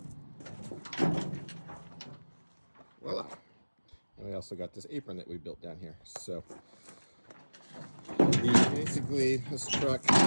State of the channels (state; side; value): inverted; both; correlation -1.00